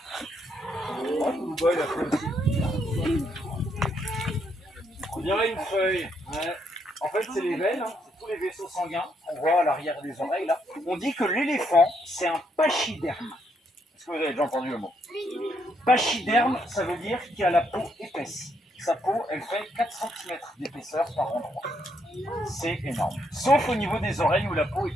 Oh, le boy, il a fait aussi. On dirait une feuille. Ouais. En fait, c'est les veines, hein. C'est tous les vaisseaux sanguins qu'on voit à l'arrière des oreilles là. On dit que l'éléphant, c'est un pachyderme. Est-ce que vous avez déjà entendu le mot? Pachyderme, ça veut dire qu'il a la peau épaisse. Sa peau, elle fait 4 cm d'épaisseur par endroit. C'est énorme. Sauf au niveau des oreilles où la peau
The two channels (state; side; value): normal; both; correlation 0.75